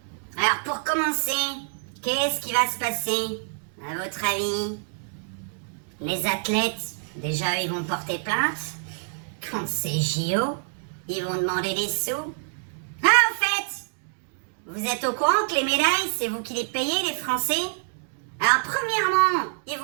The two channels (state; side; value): silent; left; digital silence